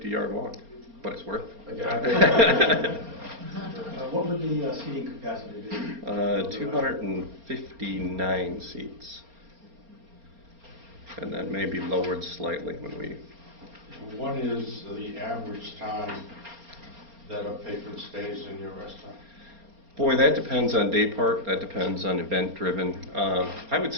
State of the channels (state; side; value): late; left; 4.3 ms